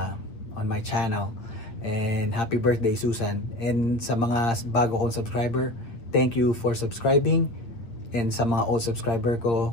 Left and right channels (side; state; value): right; late; 8.6 ms